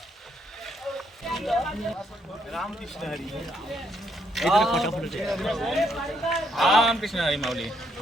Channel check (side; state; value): both; normal; correlation 0.73